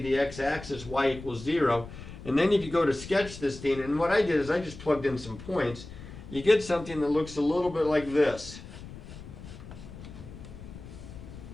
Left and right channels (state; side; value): noise; left; rumble, 14 dB below the sound